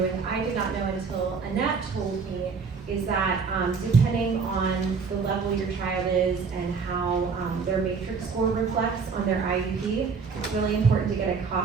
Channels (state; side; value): quieter; left; 5.3 dB